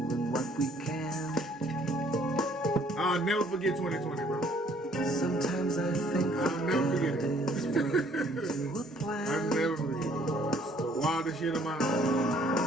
what we can. I'll never forget 2020, bro. Sometimes I think I'll never forget it. into a plan. I'll never forget it. It's the wildest shit of my life.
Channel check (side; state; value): both; normal; correlation 0.61